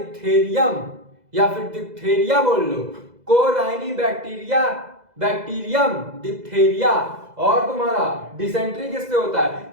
या फिर डिप्थेरिया बोल लो, कोराइनी बैक्टीरियम डिप्थेरिया। और तुम्हारा डिसेंट्री किससे होता है,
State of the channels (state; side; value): late; left; 2.0 ms